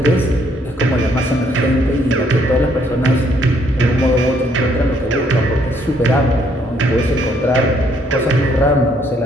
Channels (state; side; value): normal; both; correlation 0.68